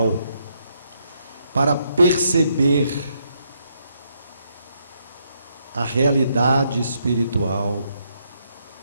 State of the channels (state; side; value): inverted; both; correlation -0.76